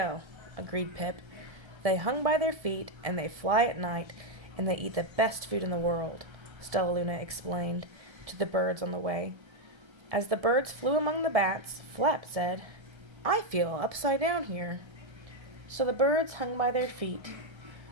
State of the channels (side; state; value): left; late; 1.3 ms